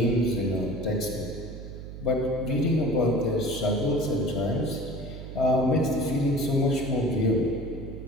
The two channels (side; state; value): right; noise; hum, 11 dB below the sound